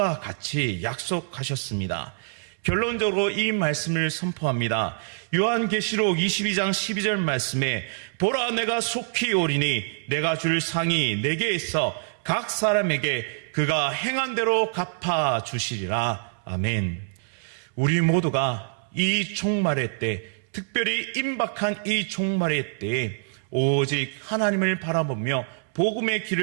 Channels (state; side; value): silent; left; 61 dB below the other